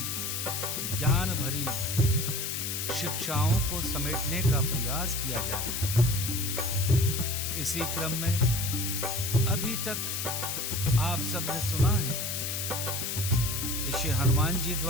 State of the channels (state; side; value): noise; left; hiss, 2 dB below the sound